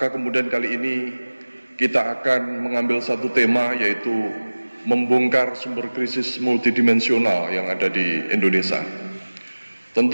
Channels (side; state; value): both; inverted; correlation -1.00